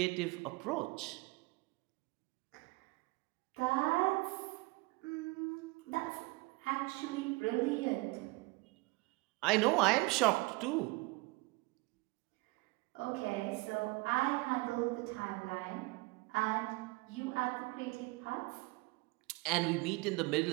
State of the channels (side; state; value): left; quieter; 24.8 dB